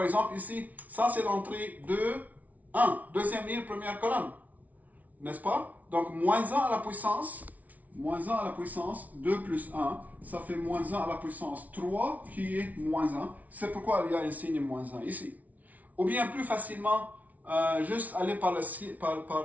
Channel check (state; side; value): late; left; 0.073 ms